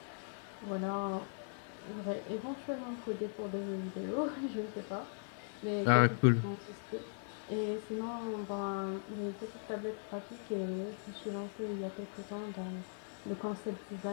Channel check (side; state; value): right; silent; digital silence